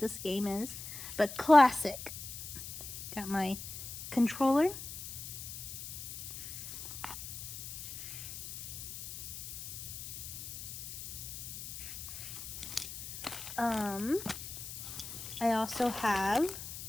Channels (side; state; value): left; noise; hiss, 9 dB below the sound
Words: game is, but classic. Got my controller. I also have,